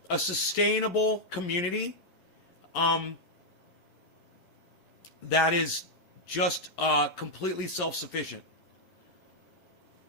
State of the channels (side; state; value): right; late; 11 ms